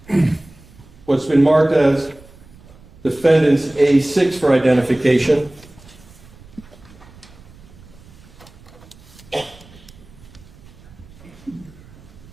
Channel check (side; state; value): right; noise; rumble, 23 dB below the sound